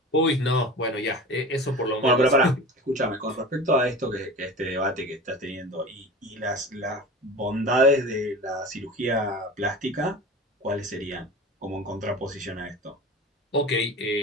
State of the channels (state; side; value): normal; both; correlation 0.34